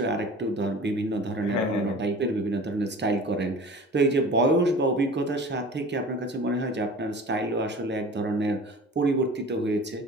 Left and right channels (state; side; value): normal; both; correlation 0.40